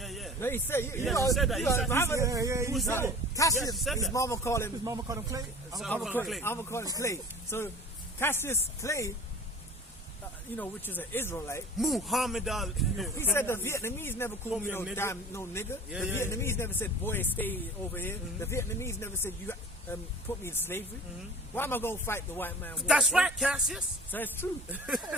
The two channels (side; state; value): both; normal; correlation 0.41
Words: No, he said, he said that. He said it. Cassius, his mama called him Clay? I'm going to call him Clay. So, Cassius Clay, which is an Israelite. Muhammad Ali. He said the Vietnamese never called me no nigga. The Vietnamese never said, boy, stay over here. The Vietnamese never said, you put me in slavery. Why am I going to fight the white man? That's right, Cassius. So it's true.